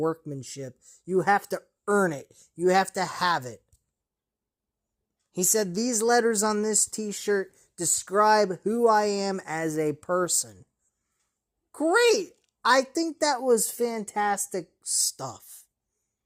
You have to earn it. You have to have it. He said, these letters on this t-shirt describe who I am as a person. Great! I think that was fantastic stuff.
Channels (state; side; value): identical; both; correlation 1.00